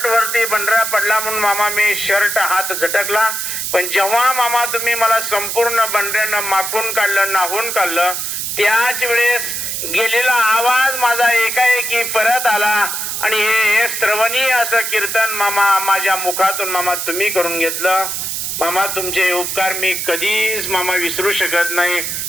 वरती बंडरा पडला म्हणून मामा मी शर्ट हात झटकला, पण जेव्हा मामा तुम्ही मला संपूर्ण बंडऱ्यानं माखून काढलं, नाहून काढलं, त्याच वेळेस गेलेला आवाज माझा एकाएकी परत आला आणि हे श्रवणीय असं कीर्तन मामा माझ्या मुखातून मामा तुम्ही करून घेतलं. मामा तुमचे उपकार मी कधीच मामा विसरू शकत नाही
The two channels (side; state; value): right; noise; hiss, 3 dB below the sound